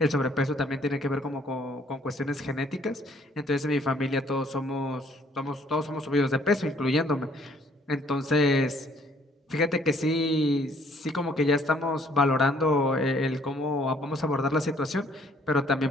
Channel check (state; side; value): normal; both; correlation 0.62